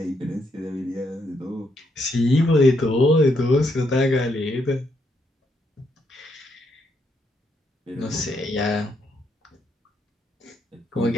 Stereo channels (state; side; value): normal; both; correlation 0.77